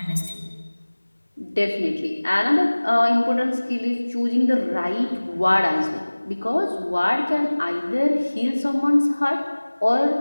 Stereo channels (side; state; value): both; inverted; correlation -1.00